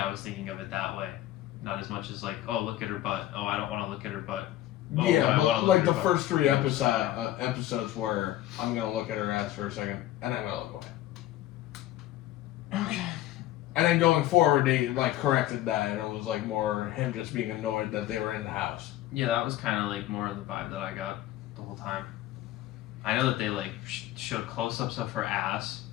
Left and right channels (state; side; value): quieter; right; 13.9 dB